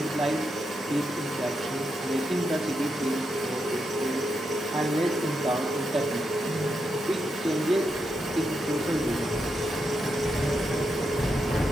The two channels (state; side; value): normal; both; correlation 0.84